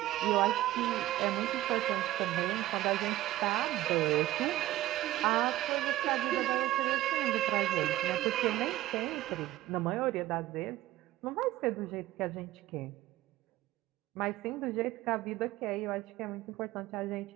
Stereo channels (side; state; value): left; quieter; 15.5 dB